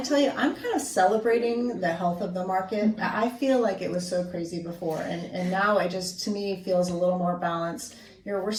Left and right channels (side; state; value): both; identical; correlation 1.00